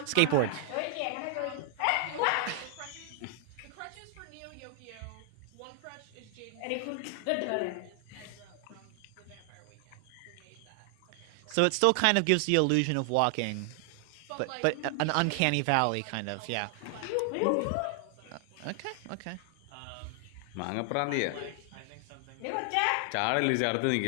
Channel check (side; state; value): both; different; correlation 0.00